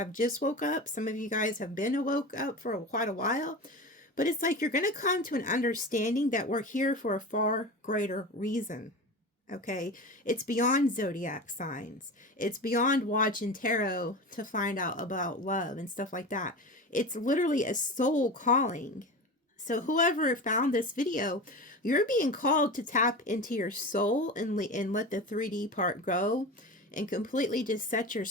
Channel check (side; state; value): both; normal; correlation 0.29